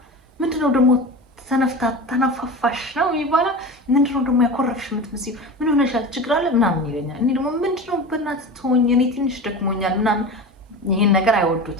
ምንድነው ደግሞ ተነፋፋሽ ነው ይባላል። ምንድነው ደግሞ ያኮረፍሽ የምትመስዪው? ምን ሆነሻል? ችግር አለ ምናምን ይለኛል። እኔ ደግሞ ምንድነው በእናትህ ተወኝ፣ እኔ ትንሽ ደክሞኛል ምናምን። ይሄን ነገር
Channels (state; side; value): normal; both; correlation 0.30